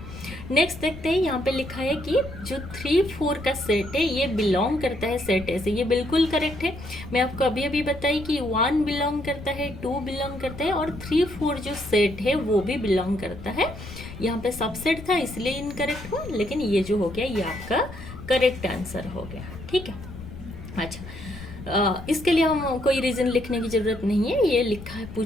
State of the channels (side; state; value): left; noise; rumble, 13 dB below the sound